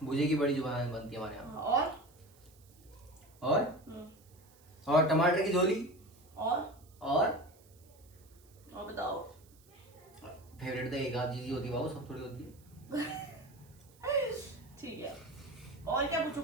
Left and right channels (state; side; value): noise; right; hiss, 28 dB below the sound